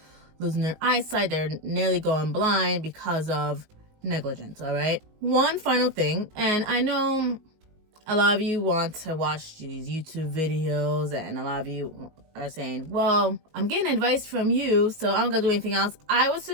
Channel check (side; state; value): left; late; 19 ms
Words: losing their eyesight. They're nearly going blind because of negligence, all right? One final thing, and I know a lot of you want to watch these YouTube videos, and a lot of you are saying, well, I'm getting advice from you, so I'm gonna do anything else. I would